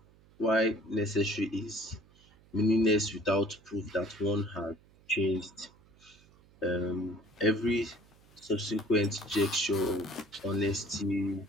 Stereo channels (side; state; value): right; noise; hum, 28 dB below the sound